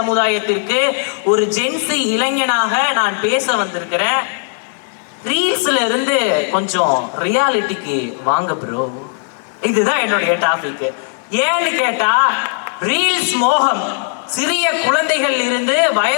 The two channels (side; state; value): right; silent; digital silence